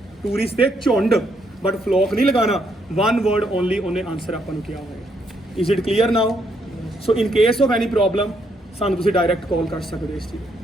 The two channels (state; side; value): normal; both; correlation 0.74